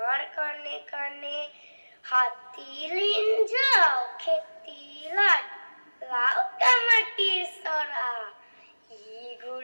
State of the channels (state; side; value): inverted; both; correlation -1.00